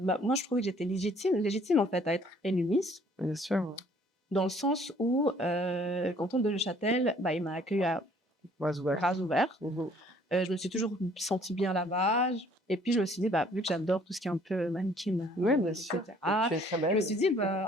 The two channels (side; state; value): both; normal; correlation 0.59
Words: moi, je trouvais que j'étais légitime en fait à être élue Miss, bien sûr. dans le sens où le canton de Neuchâtel, bah, il m'a accueilli à Ouais, ouais. bras ouverts. Mhm. Je me suis toujours sentie bien là-bas. Et puis, je me suis dit, bah, vu que j'adore tout ce qui est un peu mannequin, Ouais, bien sûr. etc., Tu es très je me belle. suis dit,